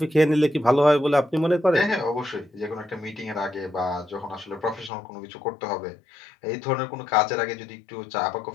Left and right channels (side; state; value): right; drops out; at 4.9 s